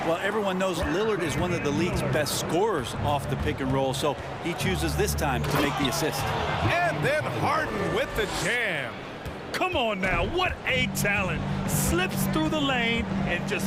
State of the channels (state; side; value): identical; both; correlation 1.00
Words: Well, everyone knows Lillard is one of the league's best scorers off the pick and roll, so he chooses this time to make the assist. And then Harden with the jam. Come on now, what a talent. Slips through the lane and just